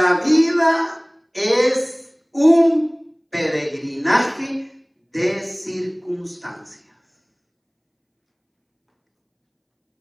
vida es un peregrinaje de circunstancias.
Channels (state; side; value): identical; both; correlation 1.00